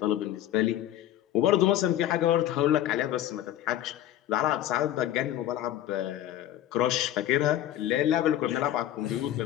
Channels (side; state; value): right; quieter; 12.5 dB